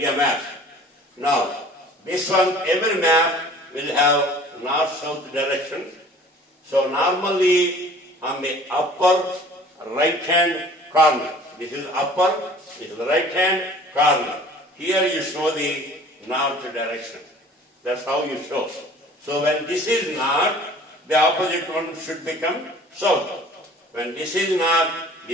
map. Now, this one, every map will have north-south direction. So normally on the upper right-hand corner, this is upper, this is the right-hand corner. Here you show the north direction. That's how you show. So when this is north, the opposite one should become south. When this is north,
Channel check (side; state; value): both; normal; correlation 0.48